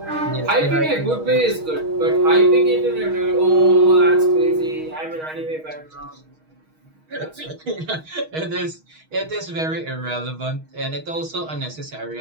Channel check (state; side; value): late; left; 6.4 ms